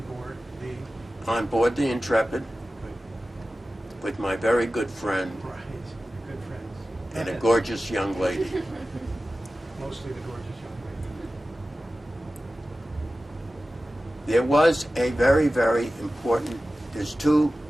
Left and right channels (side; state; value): both; normal; correlation 0.95